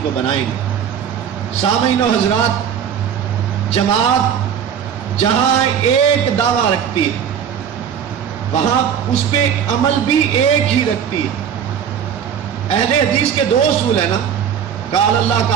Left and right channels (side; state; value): left; quieter; 8.3 dB